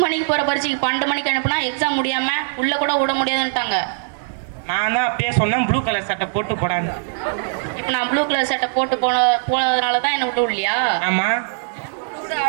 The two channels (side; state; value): left; silent; digital silence